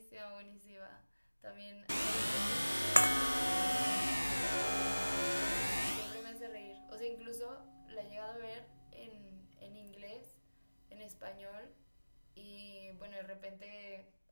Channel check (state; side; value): inverted; both; correlation -1.00